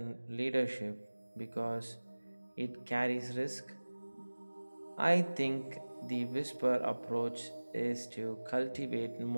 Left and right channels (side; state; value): both; inverted; correlation -1.00